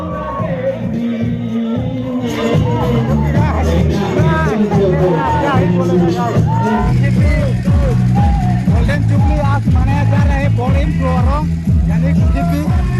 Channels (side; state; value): both; identical; correlation 1.00